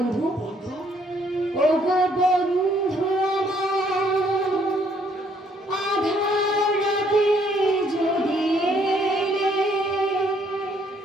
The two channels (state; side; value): normal; both; correlation 0.66